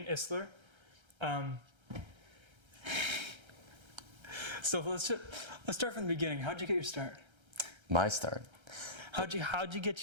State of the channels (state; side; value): late; left; 1.3 ms